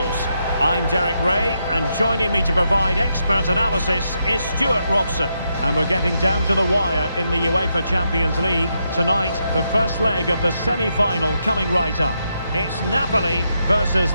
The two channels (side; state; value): both; inverted; correlation -0.82